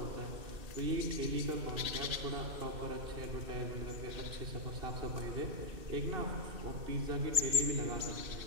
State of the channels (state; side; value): late; left; 2.6 ms